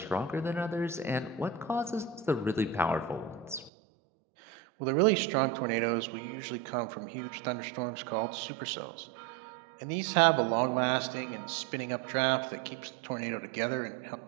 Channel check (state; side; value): drops out; left; at 3.7 s